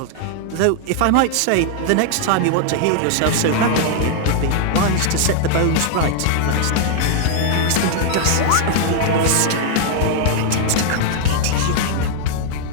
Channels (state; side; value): different; both; correlation -0.01